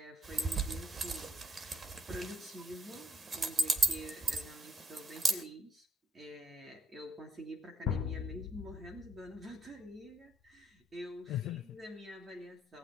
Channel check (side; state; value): both; normal; correlation 0.72